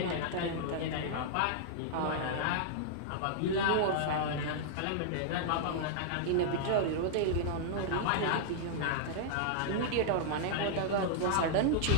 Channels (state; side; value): different; both; correlation -0.01